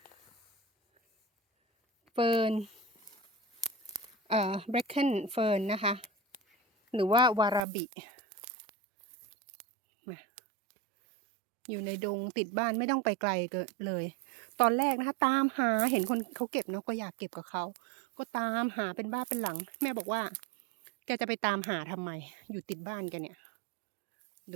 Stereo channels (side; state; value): left; drops out; at 7.7 s